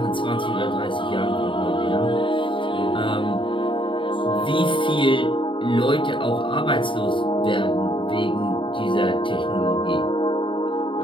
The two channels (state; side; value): late; right; 0.24 ms